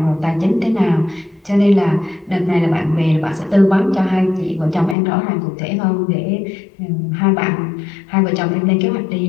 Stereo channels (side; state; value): right; drops out; at 5.0 s